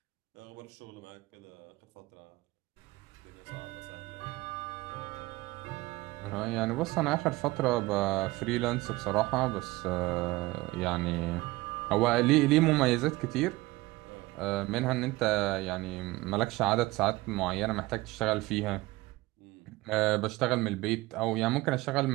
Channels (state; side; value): quieter; left; 20.1 dB